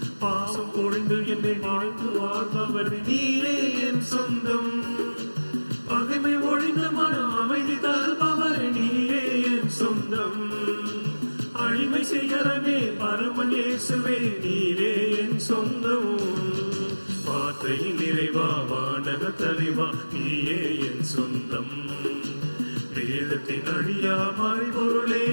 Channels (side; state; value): both; inverted; correlation -1.00